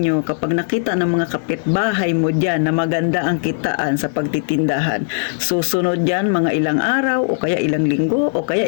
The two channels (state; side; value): silent; right; digital silence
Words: kapag nakita ng mga kapitbahay mo dyan na maganda ang kitaan sa pagtitindahan, susunod dyan mga ilang araw o kaya ilang linggo o